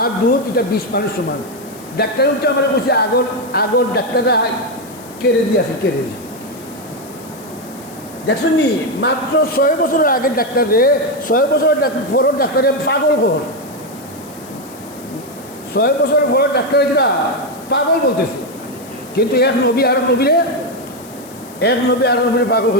দুধ এটা 20 মানুষ সমান। ডাক্তার হচ্ছে আমরা বলছি আগর ডাক্তাররা কেড়ে দিয়েছে, কেড়ে দিয়ে দেখছেন নি? মাত্র 6 বছরের আগের ডাক্তারে, 6 বছরের পরের ডাক্তারে পাগল ঘর, 6 বছরের পরের ডাক্তারে যেটা পাগল বলতেছে। কিন্তু এক নবী আর নবীরে পাগল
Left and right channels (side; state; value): left; noise; hiss, 21 dB below the sound